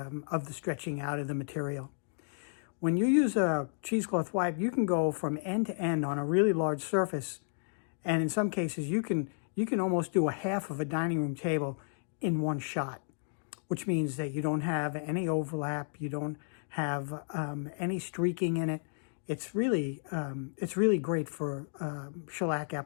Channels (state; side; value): silent; right; digital silence